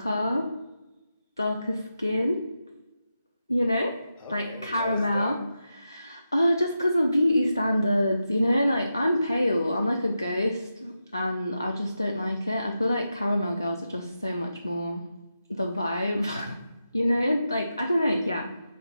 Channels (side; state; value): both; inverted; correlation -0.88